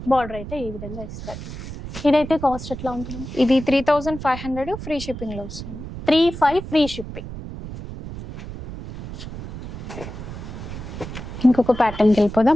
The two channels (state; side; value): noise; right; rumble, 10 dB below the sound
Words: బార్డర్ అయితే ఈ విధంగా ఇస్తారు. ఇదైతే కాస్ట్ ఎట్లా ఉంటుంది? ఇది 3500 ఫ్రీ షిప్పింగ్ లో వస్తుంది. 35 ఫ్రీ షిప్పింగ్. ఇంకొక ప్యాటర్న్కి